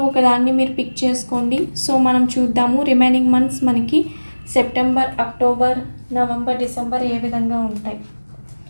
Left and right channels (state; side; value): inverted; both; correlation -1.00